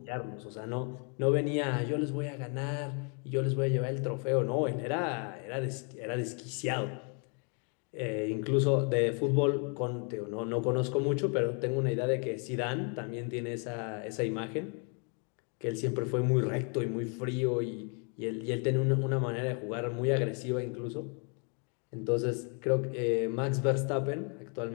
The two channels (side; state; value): right; quieter; 38.2 dB